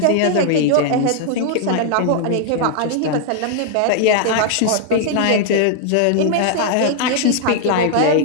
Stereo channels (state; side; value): different; both; correlation 0.00